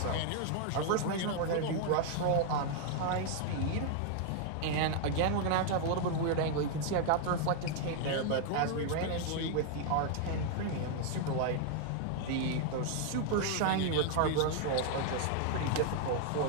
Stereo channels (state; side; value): different; both; correlation 0.00